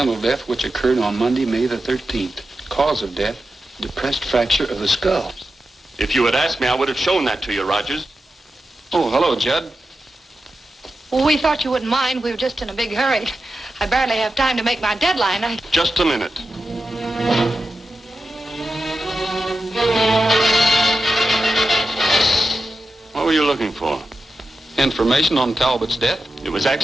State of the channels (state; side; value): normal; both; correlation 0.91